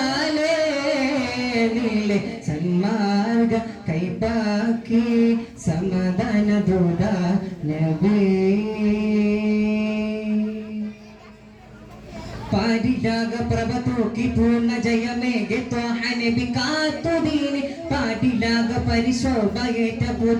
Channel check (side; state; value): both; identical; correlation 1.00